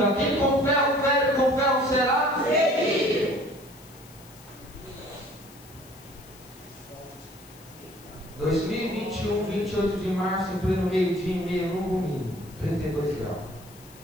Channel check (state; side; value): noise; left; hiss, 23 dB below the sound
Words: Quem com ferro fere, com ferro será ferido. 2021, 28 de março, em pleno meio-dia e meia, no domingo, 32 graus.